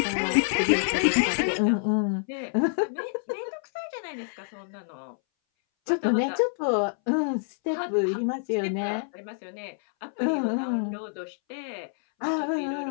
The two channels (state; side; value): silent; right; 60 dB below the other